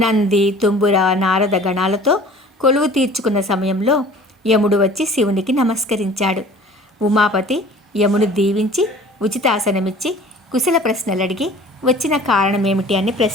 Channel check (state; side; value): normal; both; correlation 0.47